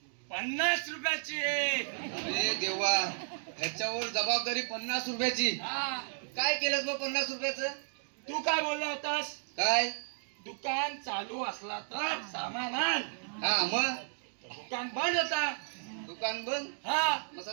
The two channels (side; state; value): left; silent; digital silence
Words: 50 रुपयाची अरे देवा, ह्याच्यावर जबाबदारी 50 रुपयाची. हा काय केलंस मग 50 रुपयाचं? तू काय बोलला होतास? काय? दुकान चालू असला तर सामान आण. हा मग दुकान बंद होता. दुकान बंद. हा मग